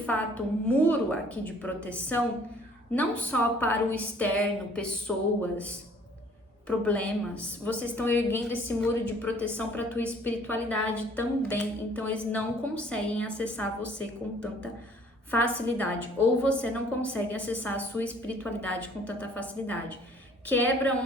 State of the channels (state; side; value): normal; both; correlation 0.56